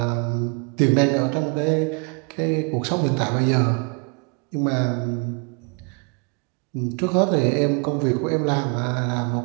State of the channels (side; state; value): left; quieter; 34.5 dB